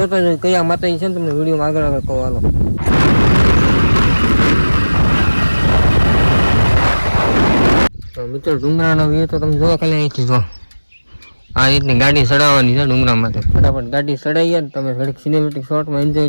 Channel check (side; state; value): both; inverted; correlation -1.00